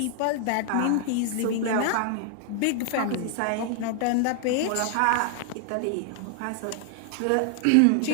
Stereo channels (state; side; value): different; both; correlation 0.00